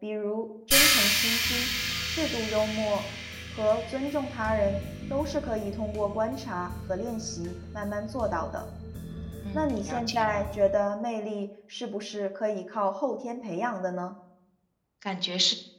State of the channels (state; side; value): identical; both; correlation 1.00